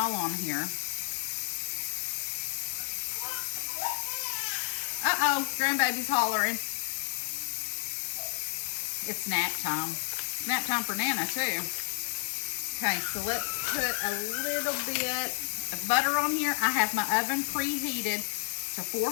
on here. Uh-oh, grandbaby's hollering. It's nap time. Nap time for Nana, too. Okay, so let's put a little bit of butter on here. I have my oven preheated to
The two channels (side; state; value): right; silent; 57 dB below the other